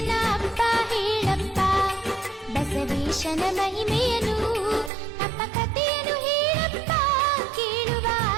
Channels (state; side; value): drops out; left; at 4.9 s